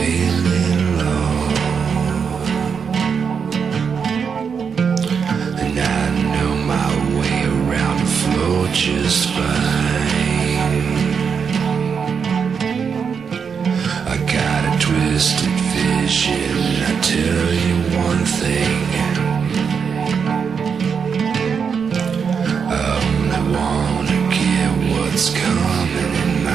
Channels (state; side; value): quieter; left; 6.3 dB